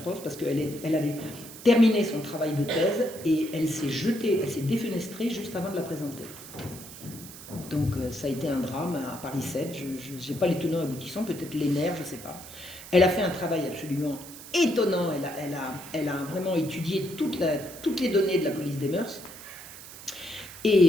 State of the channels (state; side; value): noise; right; hiss, 15 dB below the sound